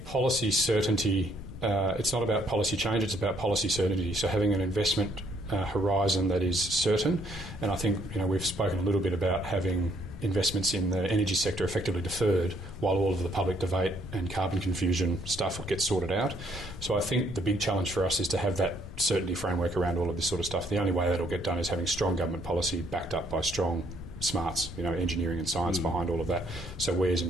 policy certainty, it's not about policy change, it's about policy certainty. So having an investment horizon that is certain, and I think we've spoken a little bit about having investments in the energy sector effectively deferred while all of the public debate and carbon confusion stuff gets sorted out. So I think the big challenge for us is to have that certainty framework around all of this sort of stuff. The only way that'll get done is having strong government policy backed up by strong smarts, engineering and science behind all of that. So we as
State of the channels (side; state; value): left; noise; rumble, 14 dB below the sound